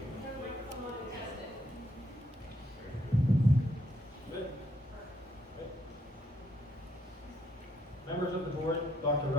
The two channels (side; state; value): both; normal; correlation 0.71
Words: Come on and test it. Good. Members of the board, Dr.